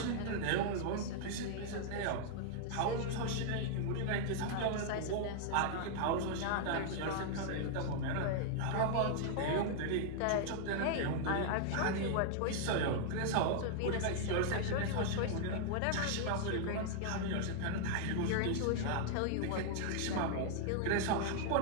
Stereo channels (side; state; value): both; different; correlation -0.01